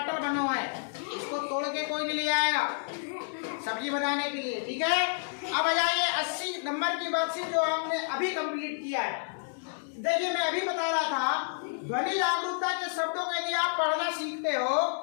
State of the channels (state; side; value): silent; right; digital silence